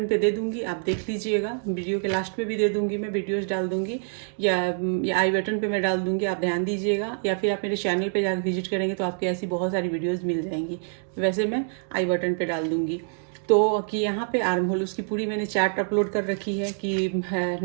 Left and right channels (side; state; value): left; silent; 61 dB below the other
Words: पे दे दूंगी, आप देख लीजिएगा। वीडियो के लास्ट में भी दे दूंगी, मैं वीडियोस डाल दूंगी या आई बटन पे मैं डाल दूंगी, आप ध्यान दीजिएगा। या फिर आप मेरे चैनल पे जाकर विजिट करेंगे तो आपको ऐसी बहुत सारी वीडियोज़ मिल जाएंगी। वैसे मैं आई बटन पर डाल दूँगी। तो कि यहाँ पे आर्म होल उसकी पूरी मैंने चार्ट अपलोड कर रखी है कि